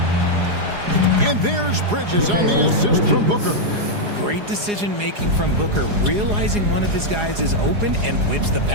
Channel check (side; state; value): left; late; 4.8 ms